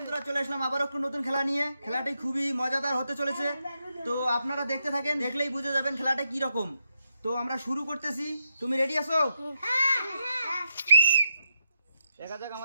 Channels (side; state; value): both; inverted; correlation -0.83